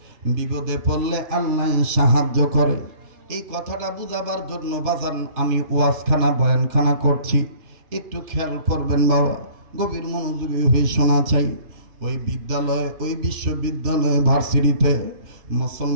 বিপদে পড়লে আল্লাহ সাহায্য করে। এই কথাটা বুঝাবার জন্য বাজান আমি ওয়াজখানা বয়ানখানা করছি, একটু খেয়াল করবেন বাবা, গভীর মনোযোগী হয়ে শোনা চাই। ওই বিদ্যালয়, ওই বিশ্ববিদ্যালয় ভার্সিটিতে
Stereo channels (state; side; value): late; left; 3.3 ms